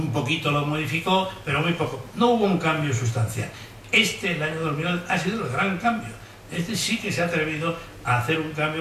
poquito lo modificó, pero muy poco. No hubo un cambio sustancial. El año 2011, ha sido el gran cambio. Sí que se ha atrevido a hacer un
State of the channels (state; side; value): identical; both; correlation 1.00